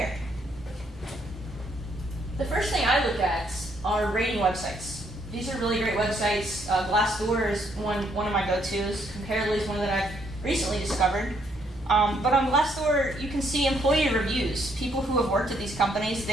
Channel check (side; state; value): both; normal; correlation 0.71